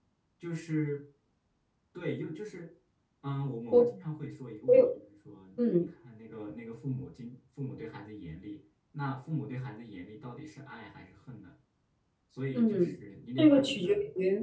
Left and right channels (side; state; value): both; identical; correlation 1.00